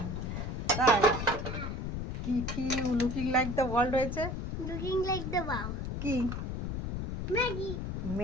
তাই কি কি লুকিং লাইক দ্য ওয়ার্ল্ড হয়েছে? লুকিং লাইক দ্য ওয়াও কি ম্যাগি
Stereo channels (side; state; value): left; noise; rumble, 4 dB below the sound